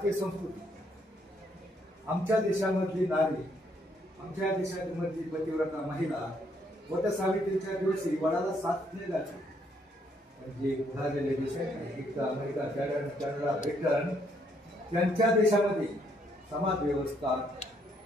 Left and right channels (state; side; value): normal; both; correlation 0.71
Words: संस्कृती. आमच्या देशामधली नारी, आमच्या देशामधली पतिव्रता महिला वट सावित्रीच्या दिवशी वडाला साथ नाही जाते. म्हणजे उधारलेले देश आहेत, अमेरिका, कॅनडा, ब्रिटन, त्यांच्या देशामध्ये समाज व्यवस्था,